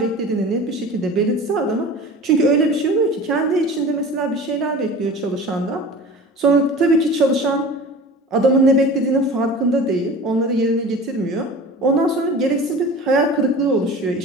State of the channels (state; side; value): normal; both; correlation 0.38